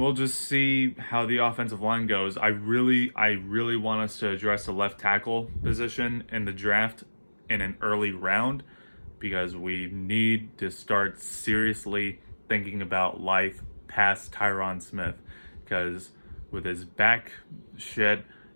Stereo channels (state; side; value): inverted; both; correlation -1.00